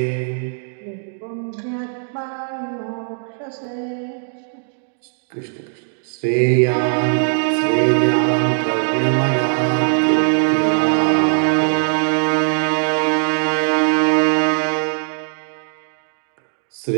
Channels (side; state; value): left; silent; 66 dB below the other